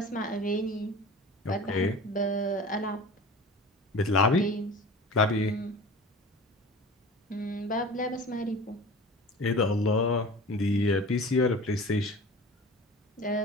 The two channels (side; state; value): both; normal; correlation 0.38